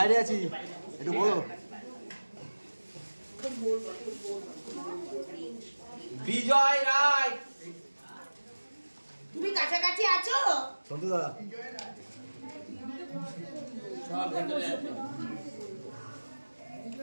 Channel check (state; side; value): inverted; both; correlation -1.00